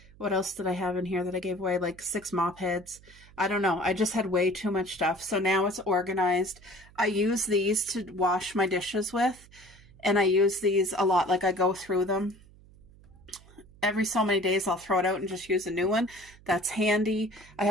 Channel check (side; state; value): right; noise; hum, 24 dB below the sound